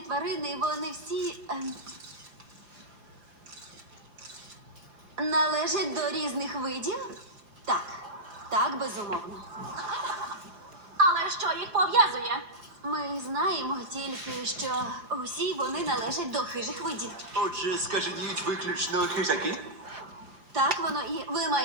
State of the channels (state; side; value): late; left; 5.8 ms